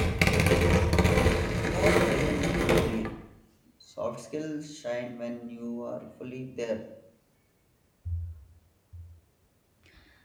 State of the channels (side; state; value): both; identical; correlation 1.00